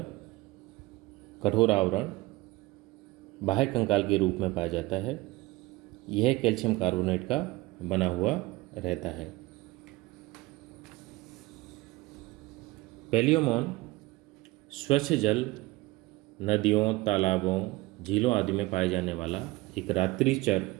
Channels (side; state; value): left; quieter; 20.3 dB